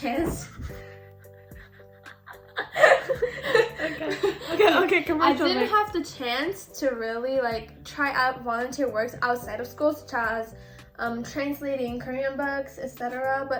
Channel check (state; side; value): identical; both; correlation 1.00